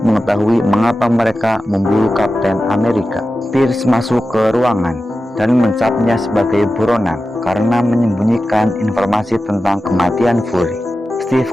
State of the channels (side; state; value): both; normal; correlation 0.93